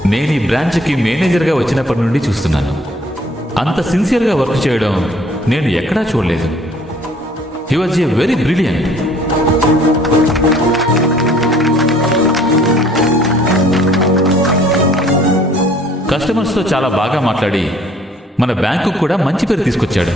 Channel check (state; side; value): normal; both; correlation 0.57